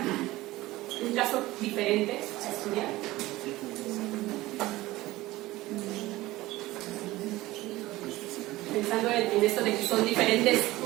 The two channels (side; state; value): left; quieter; 18.1 dB